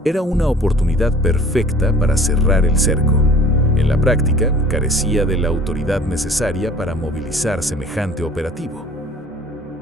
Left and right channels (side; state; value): both; normal; correlation 0.48